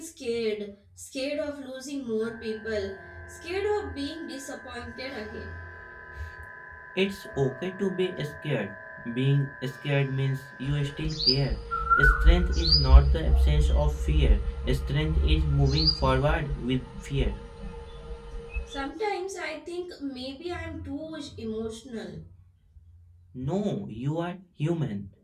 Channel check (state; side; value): identical; both; correlation 1.00